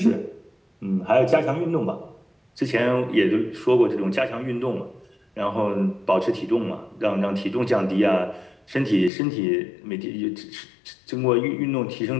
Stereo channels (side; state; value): right; drops out; at 9.1 s